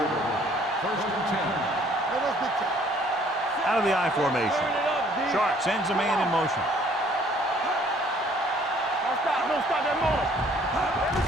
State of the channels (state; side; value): normal; both; correlation 0.59